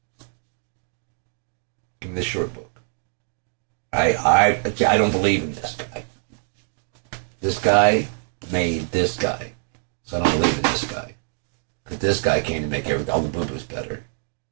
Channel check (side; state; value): left; silent; 62 dB below the other